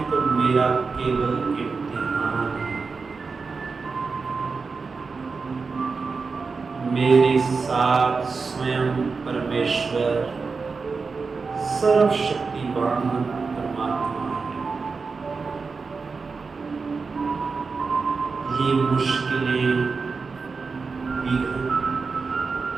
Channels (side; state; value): left; quieter; 4.6 dB